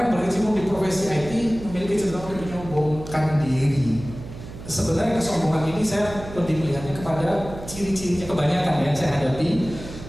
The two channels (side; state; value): right; noise; hum, 13 dB below the sound